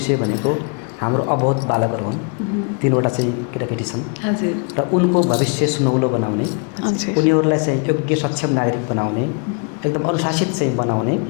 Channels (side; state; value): right; quieter; 34.2 dB